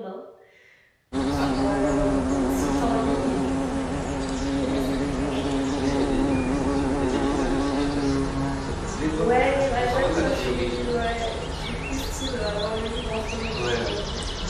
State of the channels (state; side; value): identical; both; correlation 1.00